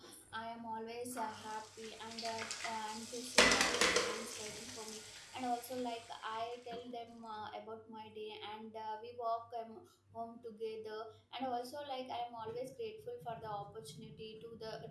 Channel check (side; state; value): both; identical; correlation 1.00